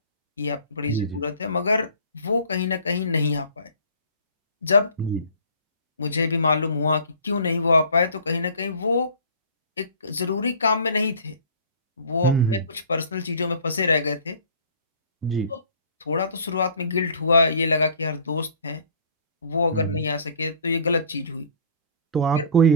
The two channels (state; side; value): inverted; both; correlation -0.47